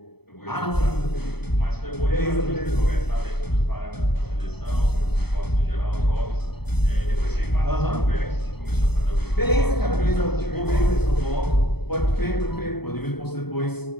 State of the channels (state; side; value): late; right; 0.97 ms